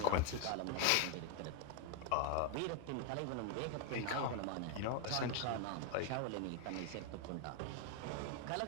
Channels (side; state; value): both; different; correlation 0.01